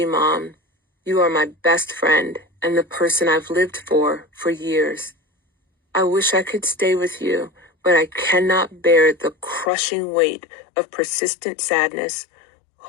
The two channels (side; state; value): right; drops out; at 9.7 s